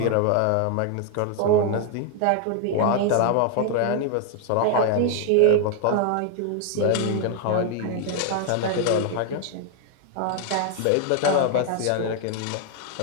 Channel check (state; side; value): different; both; correlation 0.00